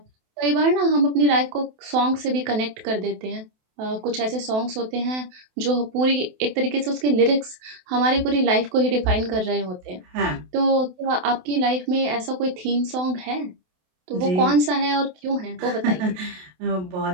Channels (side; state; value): left; late; 28 ms